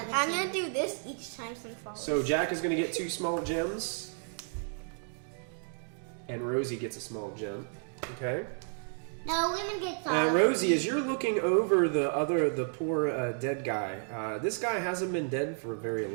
I'm going to do this each time some falls. So Jack is gonna get 2 small gems, and Rosie gets a small gem. Okay. No, women get all. Rosie, as you're looking over the poor dead guy, this guy hasn't been dead for very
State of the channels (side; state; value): left; silent; 56 dB below the other